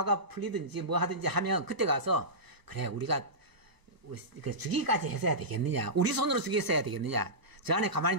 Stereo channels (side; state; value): left; late; 1.0 ms